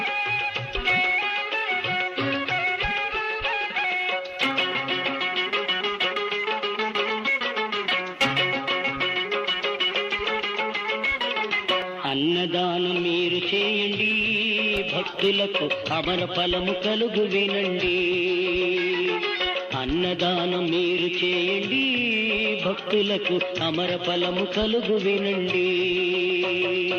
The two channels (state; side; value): identical; both; correlation 1.00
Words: అన్నదానం మీరు చేయండి, భక్తులకు అమర ఫలము కలుగు వినండి. అన్నదానం మీరు చేయండి, భక్తులకు అమర ఫలము కలుగు వినండి.